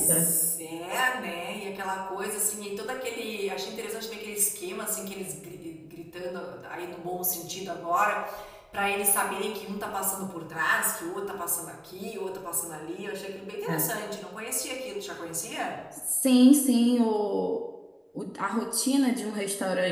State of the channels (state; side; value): identical; both; correlation 1.00